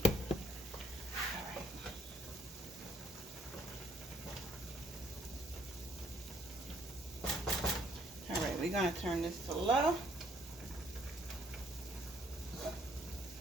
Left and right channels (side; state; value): both; normal; correlation 0.67